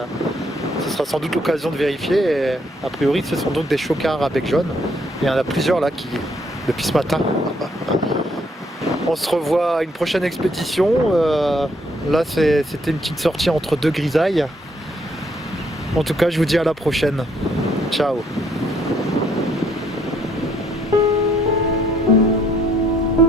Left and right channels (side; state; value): both; normal; correlation 0.69